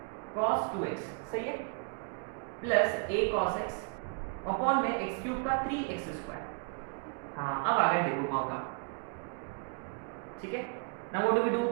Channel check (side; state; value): left; quieter; 39.6 dB